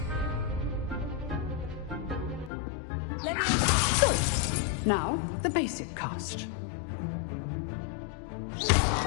Now, the basic cast.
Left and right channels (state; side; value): drops out; right; at 2.5 s